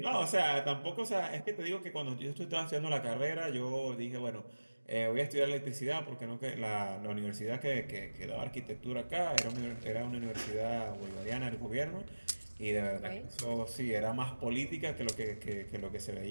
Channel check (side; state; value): both; inverted; correlation -1.00